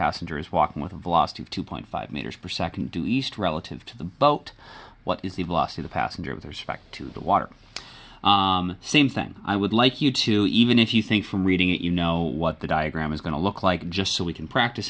is walking with a velocity of 2.5 meters per second due east relative to the boat. What is the velocity of the passenger with respect to the water? Same thing. I would like you to, even if you think from reading it you know what the diagram is going to look like, just so we can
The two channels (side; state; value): both; identical; correlation 1.00